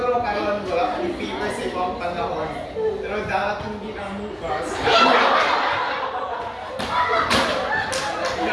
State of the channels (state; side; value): identical; both; correlation 1.00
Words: karon wala akong fever sa ibang panahon. Pero darating din ang bukas.